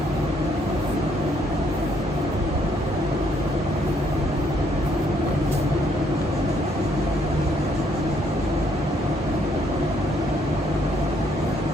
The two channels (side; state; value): both; normal; correlation 0.69